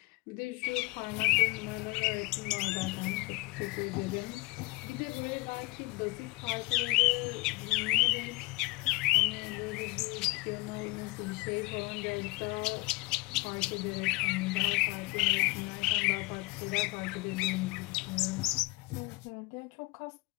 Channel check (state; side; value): quieter; right; 24.5 dB